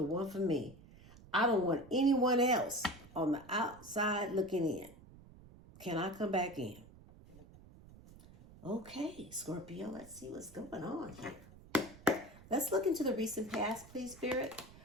one for me. I don't want anyone else on the outside looking in. Can I come back in? Okay, Scorpio, let's see what's going on here. Let's look into the recent past, please, Spirit.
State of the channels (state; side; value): noise; right; rumble, 20 dB below the sound